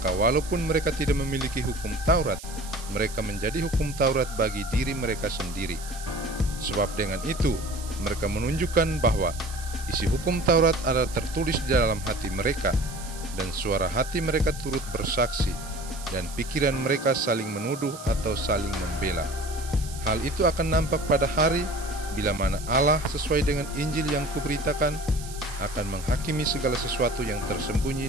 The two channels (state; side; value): noise; right; hiss, 14 dB below the sound